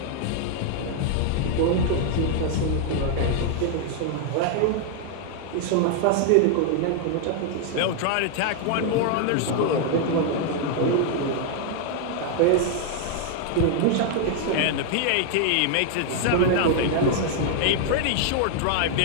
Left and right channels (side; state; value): both; different; correlation 0.00